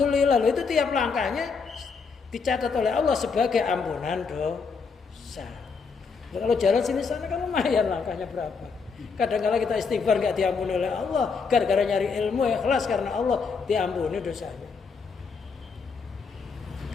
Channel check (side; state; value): right; quieter; 5.1 dB